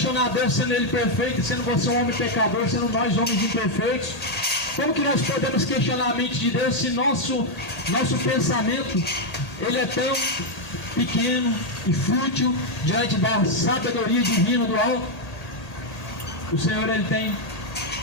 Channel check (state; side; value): late; right; 1.8 ms